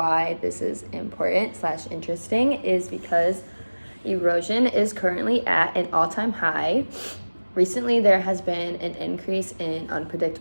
this is important/interesting is because erosion is currently at an all-time high. Recently, there has been an increase in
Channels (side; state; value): both; inverted; correlation -1.00